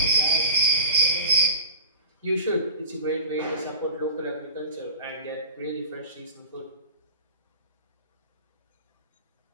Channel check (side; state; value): both; inverted; correlation -0.35